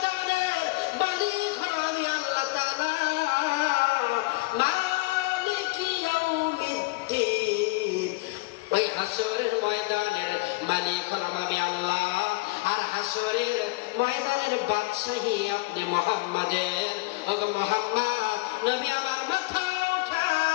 মালিক হলো আমি আল্লাহ তাআলা, মালিক ইয়াউমিদ্দিন। ওই হাসরের ময়দানের মালিক হলাম আমি আল্লাহ, আর হাসরের ময়দানের বাদশাহী আপনি মুহাম্মাদের। ওগো মুহাম্মদ নবী আমার মাথা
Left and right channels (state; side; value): quieter; right; 23.7 dB